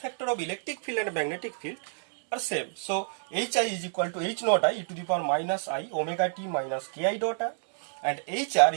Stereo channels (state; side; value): silent; left; digital silence